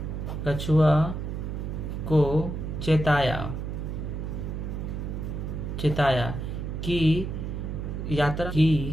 कछुआ को चेताया कि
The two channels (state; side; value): noise; right; hum, 4 dB below the sound